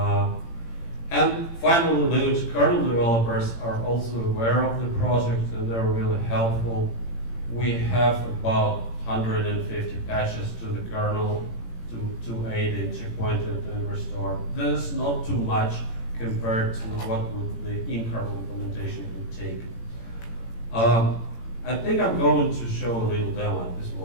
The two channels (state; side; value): late; right; 18 ms